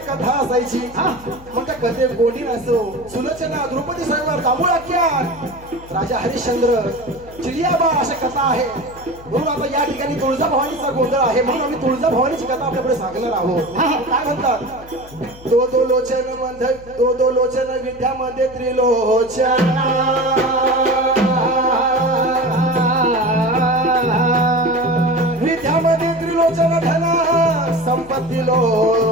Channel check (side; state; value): left; noise; hum, 20 dB below the sound